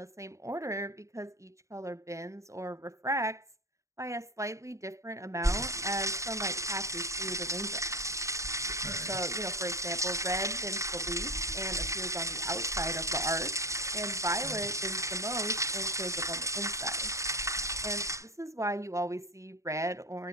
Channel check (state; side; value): late; left; 0.15 ms